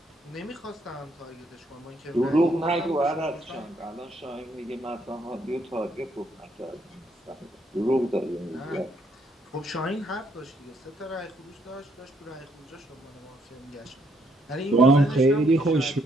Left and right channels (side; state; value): both; normal; correlation 0.71